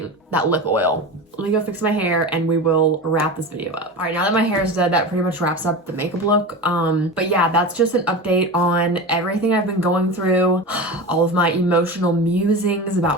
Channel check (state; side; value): normal; both; correlation 0.26